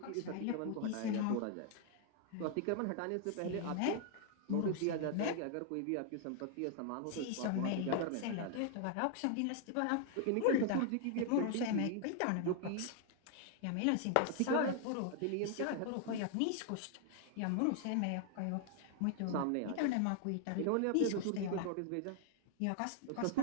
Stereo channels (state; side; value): different; both; correlation 0.00